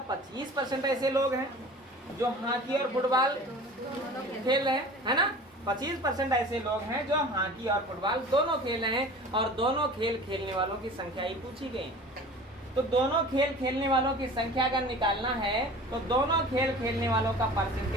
25% ऐसे लोग हैं जो हॉकी और फुटबॉल खेल रहे हैं, है ना। 25% ऐसे लोग हैं जो हॉकी और फुटबॉल दोनों खेल रहे हैं, और दोनों खेल खेलने वालों की संख्या ही पूछी गई। तो दोनों खेल खेलने वालों की संख्या अगर निकालना है तो दोनों खेल खेलने वालों का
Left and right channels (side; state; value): both; normal; correlation 0.41